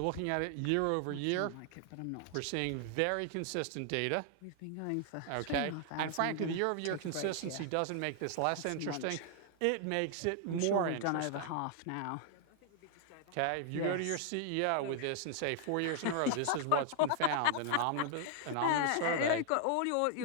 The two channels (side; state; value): both; different; correlation 0.00